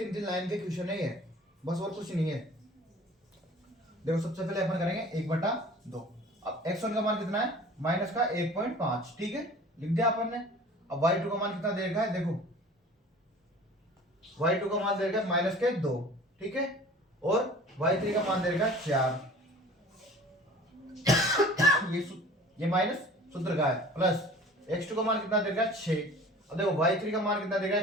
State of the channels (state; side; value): normal; both; correlation 0.45